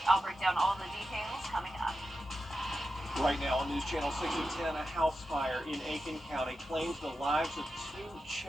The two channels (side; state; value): both; normal; correlation 0.91